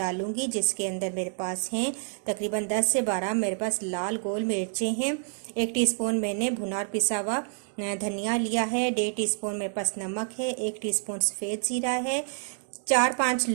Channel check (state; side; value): silent; left; 55 dB below the other